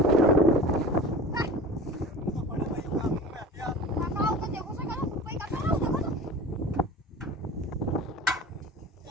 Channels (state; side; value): normal; both; correlation 0.37